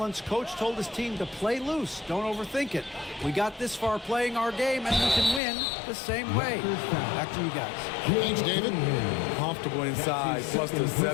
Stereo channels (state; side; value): drops out; right; at 5.4 s